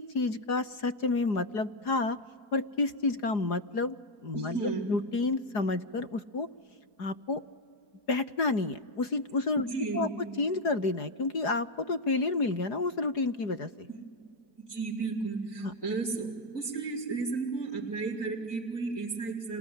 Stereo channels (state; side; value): late; right; 4.8 ms